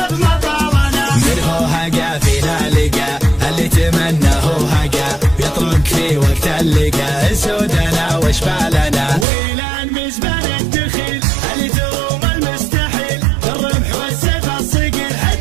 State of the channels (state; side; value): drops out; left; at 9.2 s